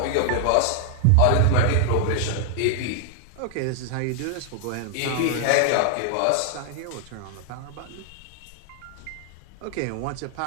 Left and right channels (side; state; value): both; different; correlation -0.01